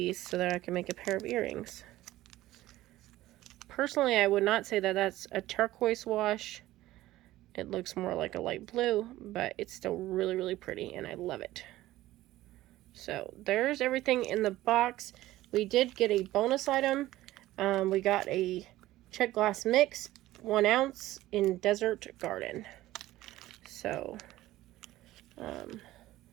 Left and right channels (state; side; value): quieter; left; 16.0 dB